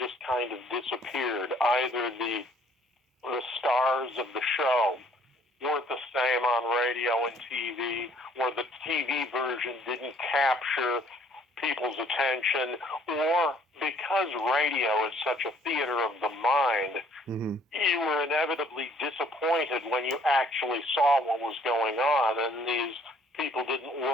kind of disappeared. Either the stars of the show weren't the same on radio and TV, or the TV version didn't capture people's attention, or because radio is such a theater of the mind, you were inevitably disappointed when you actually saw what was going on, and these people didn't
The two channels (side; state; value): both; normal; correlation 0.60